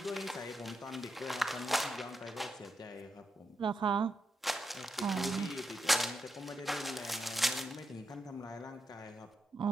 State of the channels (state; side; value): normal; both; correlation 0.84